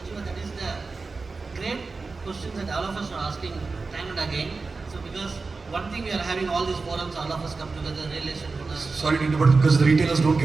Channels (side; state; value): left; quieter; 4.1 dB